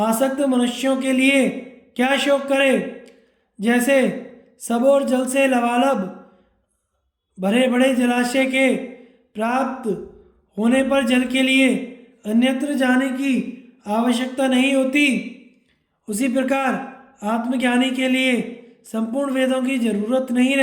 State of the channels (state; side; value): identical; both; correlation 1.00